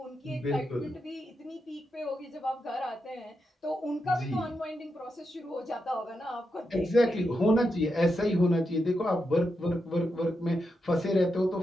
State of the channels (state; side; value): normal; both; correlation 0.86